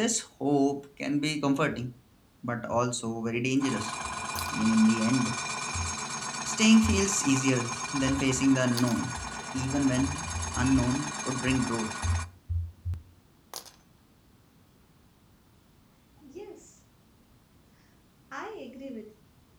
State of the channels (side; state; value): both; identical; correlation 1.00